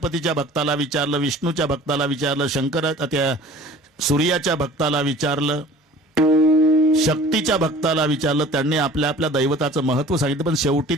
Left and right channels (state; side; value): normal; both; correlation 0.46